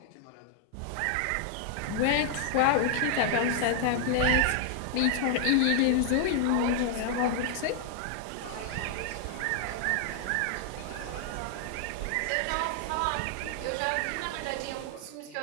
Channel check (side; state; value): both; different; correlation 0.00